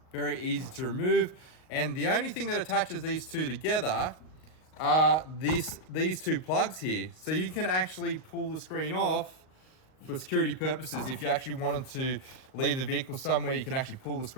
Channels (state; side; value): late; right; 38 ms